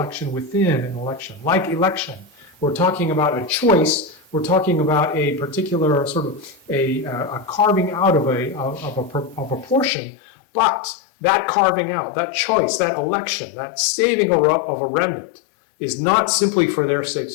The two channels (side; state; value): right; drops out; at 9.9 s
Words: within an election. Like election, we're talking about a choice. We're talking about a particular sort of a carving out of a portion, but that carving out, that choice, that election, that saving of a remnant is not simply for their